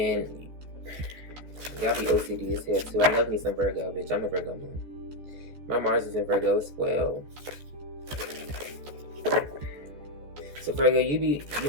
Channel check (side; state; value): left; late; 14 ms